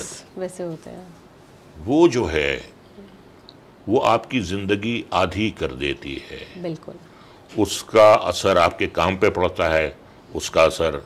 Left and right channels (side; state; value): both; identical; correlation 1.00